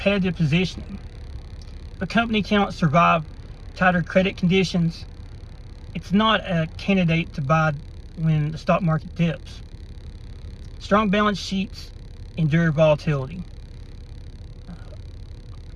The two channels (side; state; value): both; identical; correlation 1.00